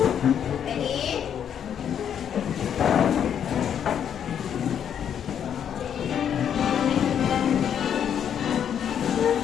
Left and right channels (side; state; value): right; quieter; 8.8 dB